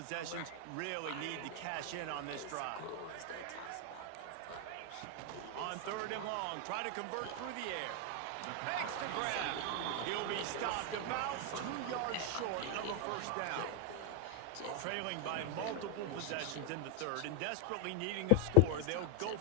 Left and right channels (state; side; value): different; both; correlation 0.00